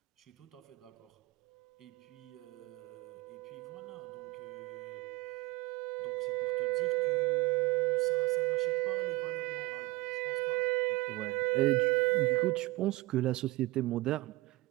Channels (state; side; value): quieter; left; 21.2 dB